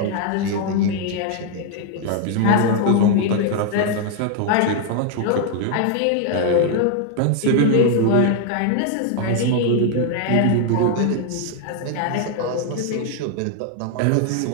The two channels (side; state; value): both; different; correlation 0.00